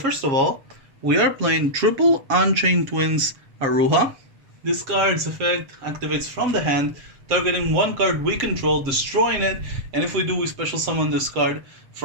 of all, we are playing triple Unchained Twins Aruha. This card's effect activates from the hand, targeting one card we control, destroying it, and if we do, we special summon this card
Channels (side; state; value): left; late; 7.4 ms